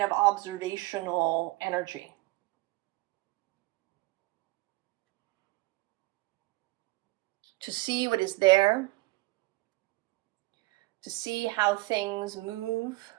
of observational energy. To see what is there, to see how things move.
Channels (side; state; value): left; quieter; 21.7 dB